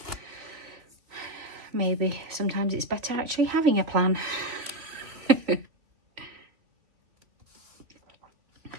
Maybe sometimes it's better actually having a plan.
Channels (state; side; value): late; left; 3.1 ms